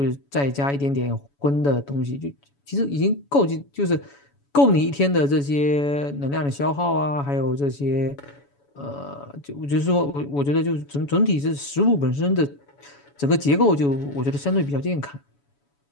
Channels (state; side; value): late; right; 7.1 ms